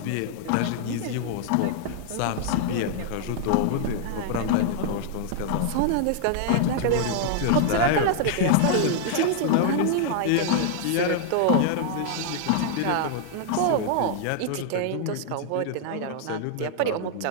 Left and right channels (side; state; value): both; different; correlation -0.01